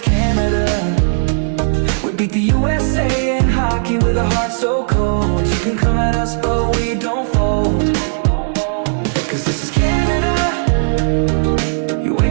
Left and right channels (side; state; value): left; silent; digital silence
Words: Canada. We beat the USA in hockey with a heart so cold. You can come at us, but we don't fold. Cause this is Canada. You